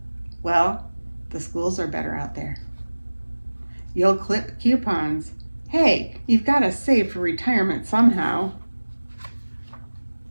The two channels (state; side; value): inverted; both; correlation -1.00